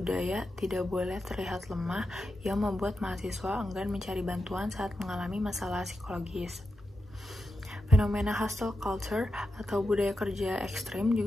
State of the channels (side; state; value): both; normal; correlation 0.89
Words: tidak boleh terlihat lemah yang membuat mahasiswa enggan mencari bantuan saat mengalami masalah psikologis. Fenomena hustle culture atau budaya kerja ekstrim